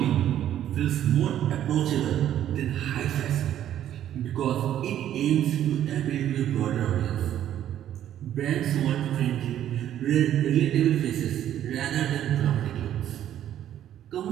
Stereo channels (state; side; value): quieter; left; 11.2 dB